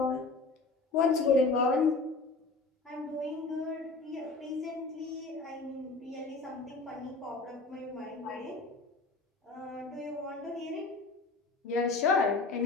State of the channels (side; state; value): right; quieter; 3.7 dB